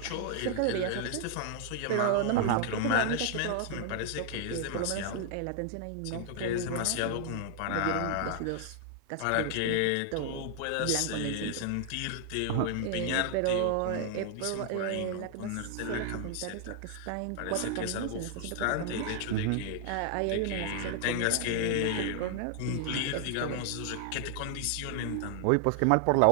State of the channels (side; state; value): both; different; correlation 0.00